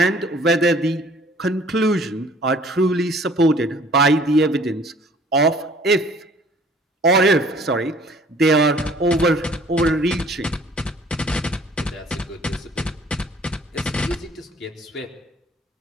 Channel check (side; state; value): both; normal; correlation 0.54